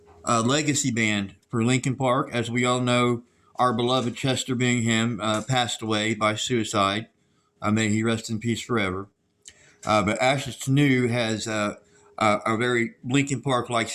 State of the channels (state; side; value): identical; both; correlation 1.00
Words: legacy band for Linkin Park. As we all know, our beloved Chester Bingham passed away by suicide. May he rest in peace forever. But Ashes to New has a very Linkin Park like